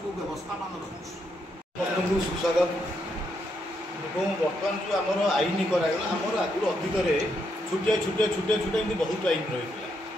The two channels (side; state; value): both; normal; correlation 0.78